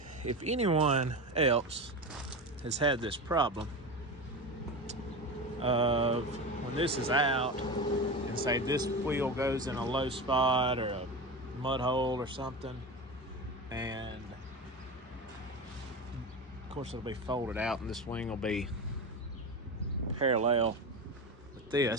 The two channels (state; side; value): normal; both; correlation 0.24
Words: If anyone else has had this problem of when this is out and say this wheel goes in a low spot or a mud hole or something, and of course it'll be folded out and this wing will be parallel with